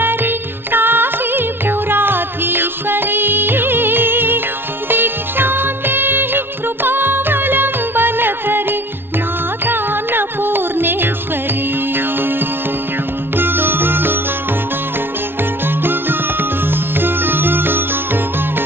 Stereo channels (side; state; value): left; late; 0.11 ms